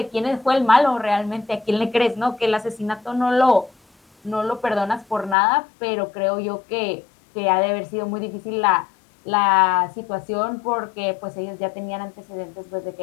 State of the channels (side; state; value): right; drops out; at 5.4 s